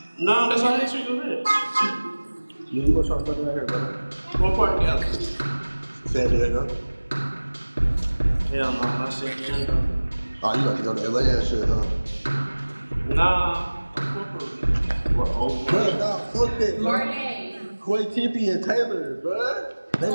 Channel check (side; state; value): both; inverted; correlation -1.00